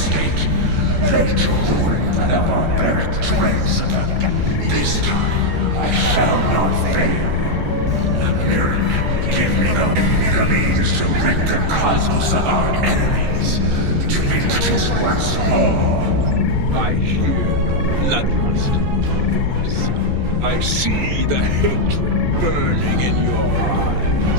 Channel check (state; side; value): late; left; 14 ms